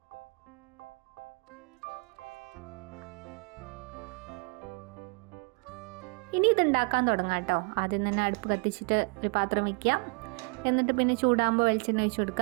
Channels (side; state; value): left; quieter; 31.5 dB